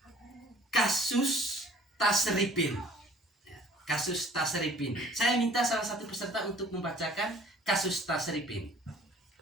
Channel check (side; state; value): both; normal; correlation 0.53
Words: kasus Tasripin. Kasus Tasripin. Saya minta salah satu peserta untuk membacakan kasus Tasripin.